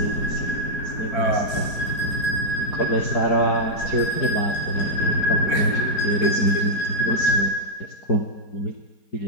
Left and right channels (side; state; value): right; late; 4.5 ms